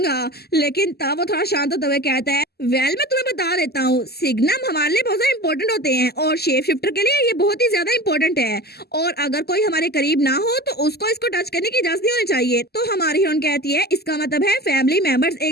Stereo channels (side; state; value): right; late; 0.46 ms